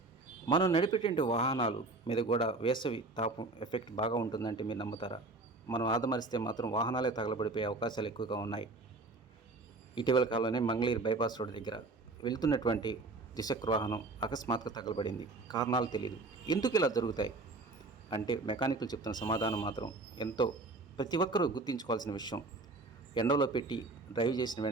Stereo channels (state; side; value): quieter; left; 3.4 dB